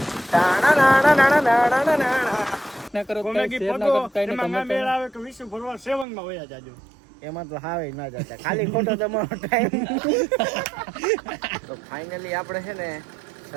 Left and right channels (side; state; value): left; drops out; at 6.1 s